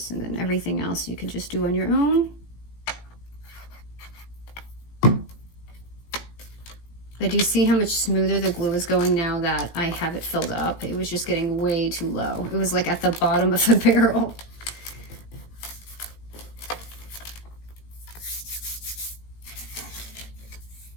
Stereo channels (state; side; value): late; right; 18 ms